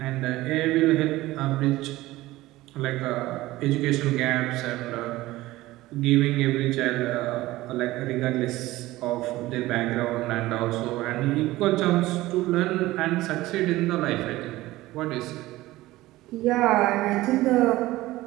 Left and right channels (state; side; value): quieter; left; 17.7 dB